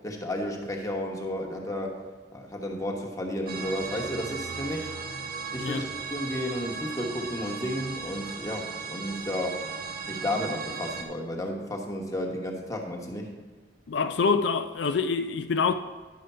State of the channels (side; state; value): both; normal; correlation 0.32